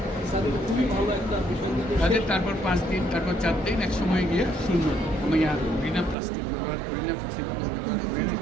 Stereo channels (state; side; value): drops out; left; at 6.2 s